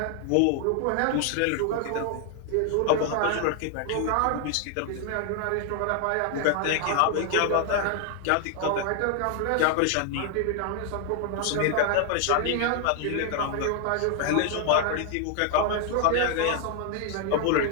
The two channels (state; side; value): different; both; correlation 0.00